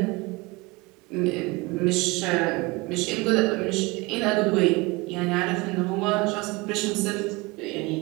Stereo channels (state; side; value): quieter; left; 24.0 dB